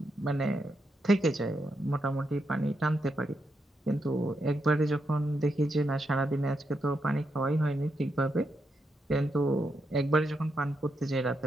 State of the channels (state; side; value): normal; both; correlation 0.83